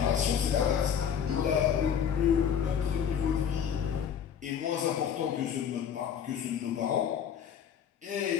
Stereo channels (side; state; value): right; quieter; 8.1 dB